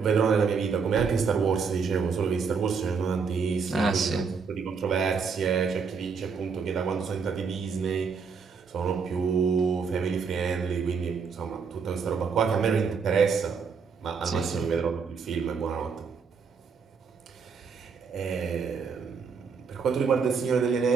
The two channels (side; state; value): left; quieter; 5.6 dB